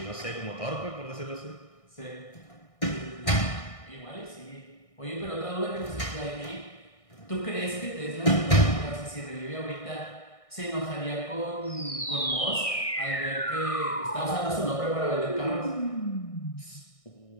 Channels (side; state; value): right; late; 1.6 ms